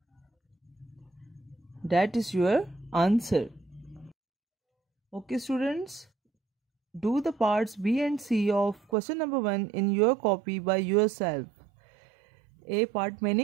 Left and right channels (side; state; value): left; drops out; at 8.8 s